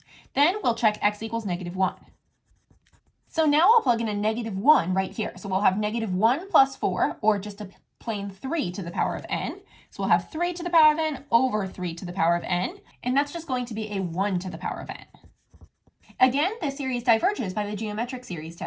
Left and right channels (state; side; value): identical; both; correlation 1.00